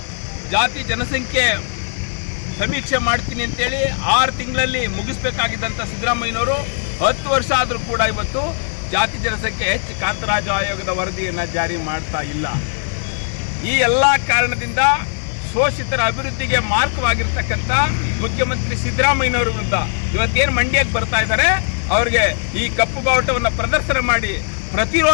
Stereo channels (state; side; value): silent; right; 63 dB below the other